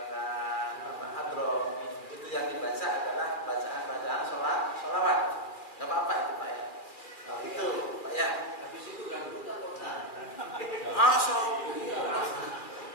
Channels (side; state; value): right; late; 2.4 ms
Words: hadroh itu yang dibaca adalah bacaan-bacaan sholawat. Enggak apa-apa itu Pak ya. Itu Pak ya. Habis itu ganggu atau enggak? Masuk.